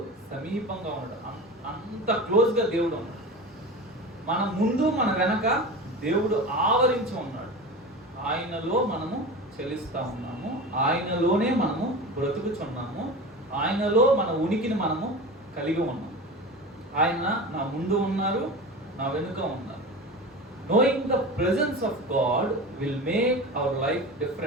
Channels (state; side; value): normal; both; correlation 0.30